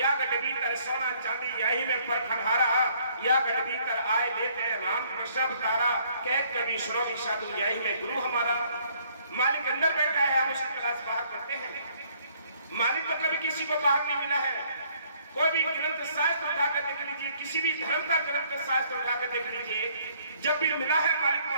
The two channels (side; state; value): both; inverted; correlation -0.64